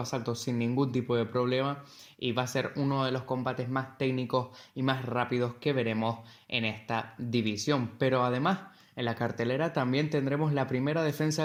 sin ningún tipo de problema, y va a ser uno de los combates más técnicos y más rápidos que veremos en esta división. Pero además, en la cartelera también tendremos la primera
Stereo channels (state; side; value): identical; both; correlation 1.00